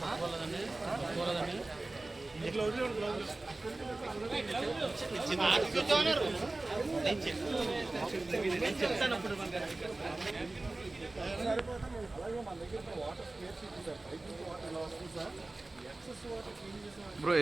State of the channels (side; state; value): left; quieter; 3.0 dB